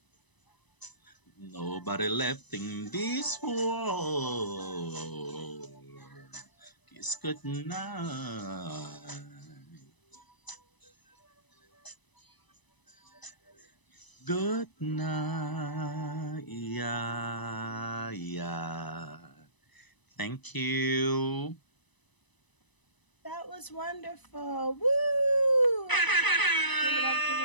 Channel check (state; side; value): late; right; 1.0 ms